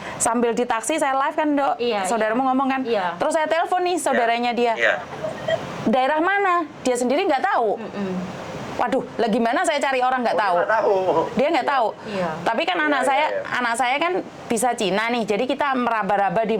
Sambil di taksi saya live kan Dok, saudaramu ngomong kan. Terus saya telepon nih saudaranya dia. Daerah mana? Dia sendiri nggak tahu. Waduh, lah gimana saya cari orang nggak tahu? Dia nggak tahu. Tapi kan anak saya kan bisa Cina nih, jadi kita meraba-raba di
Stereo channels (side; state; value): both; identical; correlation 1.00